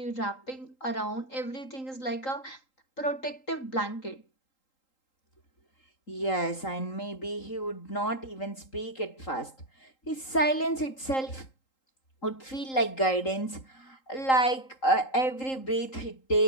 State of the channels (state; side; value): late; right; 3.8 ms